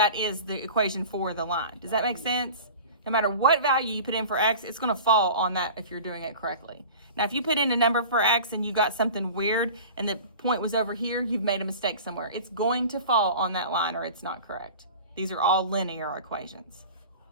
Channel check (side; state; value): both; inverted; correlation -0.38